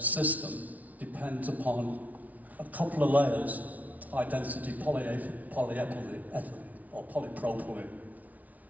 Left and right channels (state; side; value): late; left; 0.073 ms